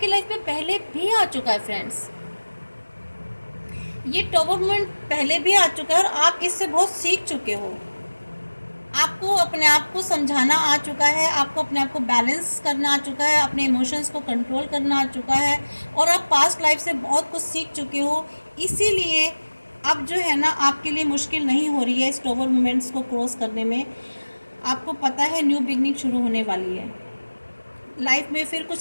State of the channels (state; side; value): inverted; both; correlation -1.00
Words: लाइफ में पहले भी आ चुका है फ्रेंड्स, ये टॉवर मोमेंट पहले भी आ चुका है और आप इससे बहुत सीख चुके हो, आपको अपने आप को समझाना आ चुका है, आपको अपने आप को बैलेंस करना आ चुका है, अपने इमोशंस को कंट्रोल करना आ चुका है, और आप पास्ट लाइफ से बहुत कुछ सीख चुके हो, इसीलिए अब जो है ना आपके लिए मुश्किल नहीं हो रही है इस टॉवर मोमेंट्स को क्रॉस करने में, आपको पता है न्यू बिगनिंग शुरू होने वाली है, लाइफ में फिर